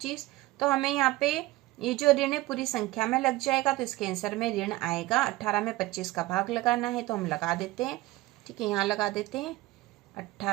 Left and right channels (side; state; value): left; quieter; 18.7 dB